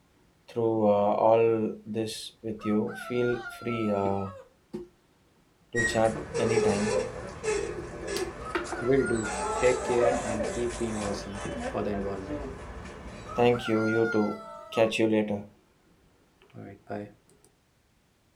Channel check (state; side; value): identical; both; correlation 1.00